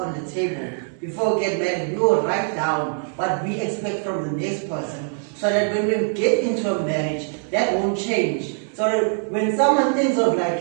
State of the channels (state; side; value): silent; left; 64 dB below the other